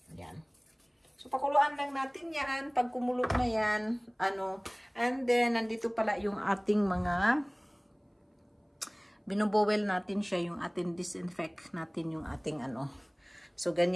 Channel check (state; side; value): identical; both; correlation 1.00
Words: Yan. So, pakuluan lang natin yan. Pag kumulo na yan, and then, nandito pala yung ating mga binubowel natin siya, yung ating disinfect natin yung ating So,